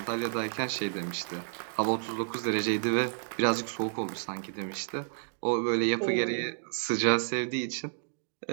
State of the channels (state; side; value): silent; left; digital silence